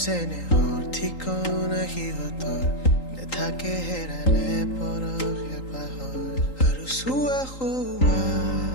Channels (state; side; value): late; right; 3.8 ms